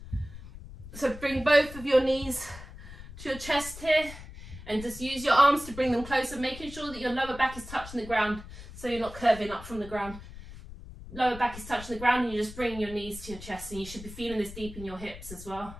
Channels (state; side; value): noise; left; rumble, 14 dB below the sound